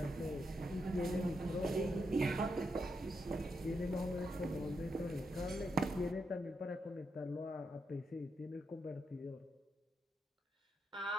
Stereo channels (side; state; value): both; normal; correlation 0.83